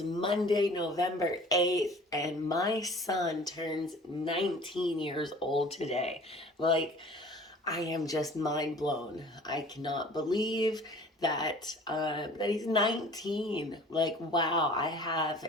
Monday, November 8th, and my son turns 19 years old today. Like, I am just mind blown. I cannot believe that he's 19. Like, wow, I have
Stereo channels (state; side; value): normal; both; correlation 0.47